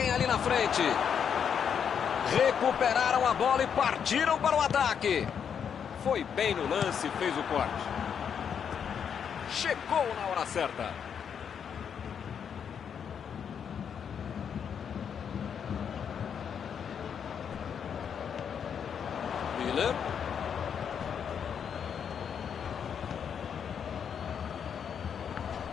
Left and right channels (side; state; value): right; quieter; 7.6 dB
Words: ali na frente. Recuperaram a bola e partiram para o ataque. Foi bem no lance e fez o corte. Chegou na hora certa. Miller.